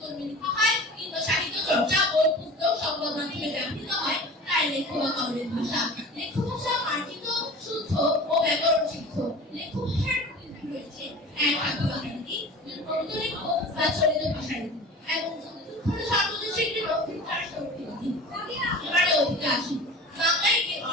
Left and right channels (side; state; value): both; normal; correlation 0.38